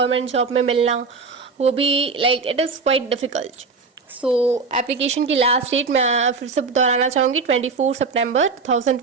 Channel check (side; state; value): left; quieter; 4.6 dB